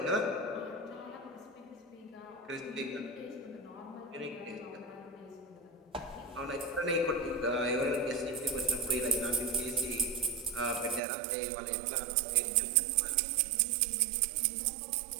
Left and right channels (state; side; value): drops out; left; at 11.0 s